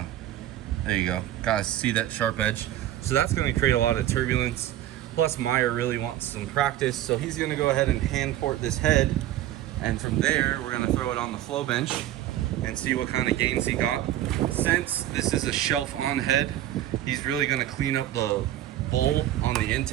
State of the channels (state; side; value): quieter; left; 13.1 dB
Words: there you go. Guys, see that sharp edge? So that's going to create a lot of turbulence. Plus Myer really wants some practice, so he's going to go ahead and hand port this head, and from there we're going to throw it on the flow bench and see what kind of gains he got. Since this is a shelf on head, he's really going to clean up the bowl on the